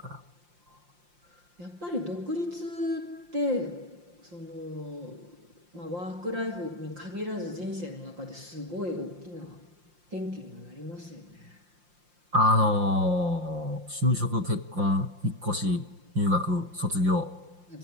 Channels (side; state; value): left; late; 5.7 ms